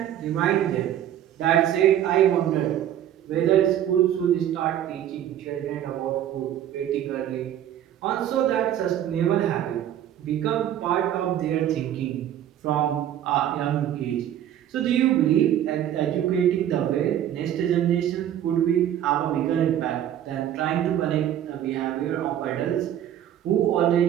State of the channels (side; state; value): left; quieter; 11.1 dB